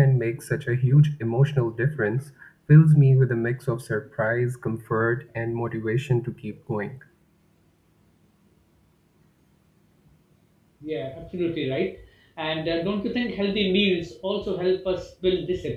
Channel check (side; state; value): both; identical; correlation 1.00